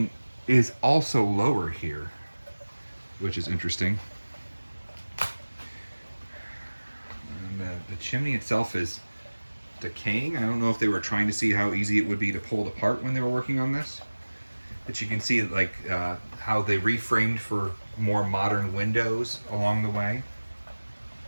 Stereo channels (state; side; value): inverted; both; correlation -1.00